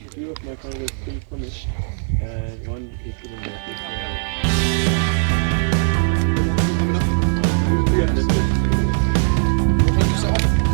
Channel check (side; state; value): left; silent; 56 dB below the other